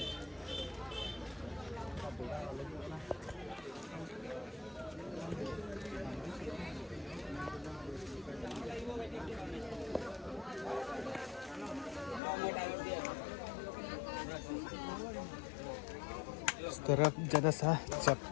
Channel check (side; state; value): right; drops out; at 12.2 s